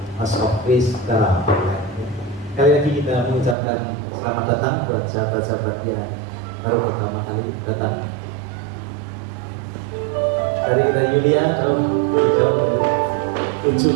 House of Praise secara online. Kali lagi kita mengucapkan selamat datang buat sahabat-sahabat yang baru pertama kali datang. Dari kita Yulia jauh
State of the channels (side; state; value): left; drops out; at 3.6 s